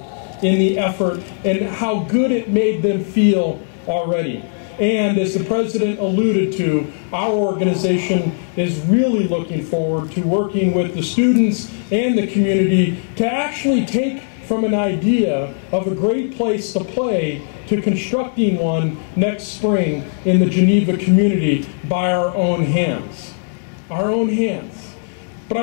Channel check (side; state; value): right; silent; digital silence